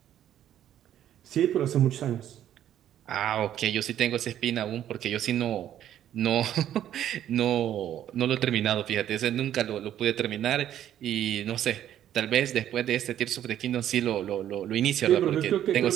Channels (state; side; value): quieter; left; 11.2 dB